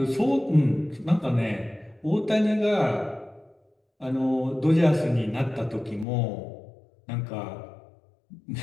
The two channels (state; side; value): drops out; right; at 6.1 s